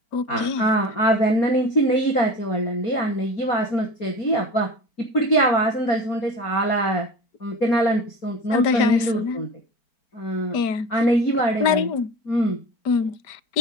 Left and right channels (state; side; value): late; right; 4.4 ms